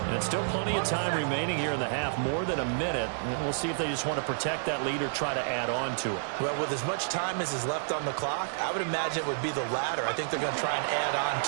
And still plenty of time remaining here in the half, more than a minute. And we'll see if they just want to protect that lead or try to add on to it. Well, with as much time as is left on the clock, I would imagine it would be the latter. I think they're going to try and add on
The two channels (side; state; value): left; silent; 58 dB below the other